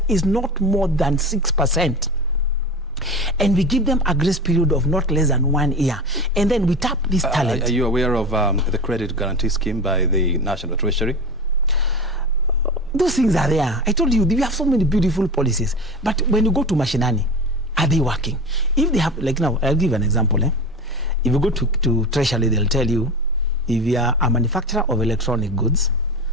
is not more than 6%? And we give them a grace period of not less than 1 year. And then we tap this talent. Are you aware of the credit guarantee scheme by the National Treasury? Those things are there. I told you, we have so many beautiful policies. But when you go to Mashinani, are they working? If they have, like now, I'll give an example. If you go to Treasury, they'll tell you, if you are a manufacturer of electronic goods,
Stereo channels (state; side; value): normal; both; correlation 0.28